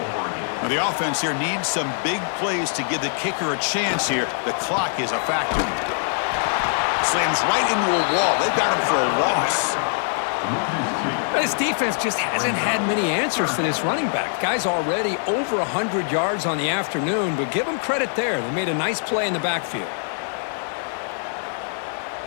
Now the offense here needs some big plays to give the kicker a chance here. The clock is a factor. Slams right into a wall. They've got him for a loss. This defense just hasn't had many answers for this running back. Guy's already over 100 yards on the afternoon, but give them credit there. They made a nice play in the backfield.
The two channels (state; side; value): silent; right; digital silence